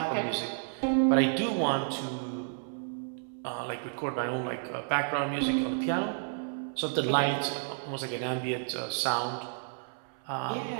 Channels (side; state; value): left; silent; 57 dB below the other